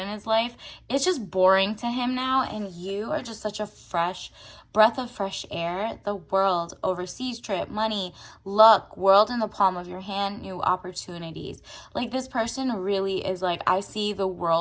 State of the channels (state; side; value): identical; both; correlation 1.00